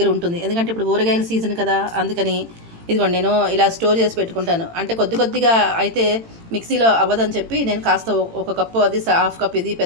ఉంటుంది, ఎందుకంటే ఇప్పుడు ఊరగాయల సీజన్ కదా, అందుకని ఇదిగోండి నేను ఇలా స్టోర్ చేసి పెట్టుకుంటాను. అంటే కొద్దిగా అయితే మిక్సీలో అవ్వదని చెప్పి నేను కాస్త ఒక కప్పు అది, హాఫ్ కప్ ఇది,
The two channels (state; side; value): late; left; 18 ms